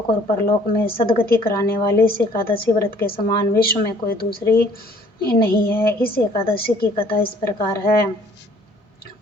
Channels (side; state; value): both; normal; correlation 0.57